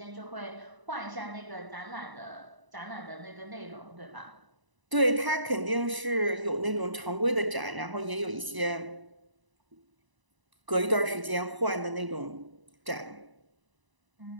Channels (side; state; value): left; late; 1.0 ms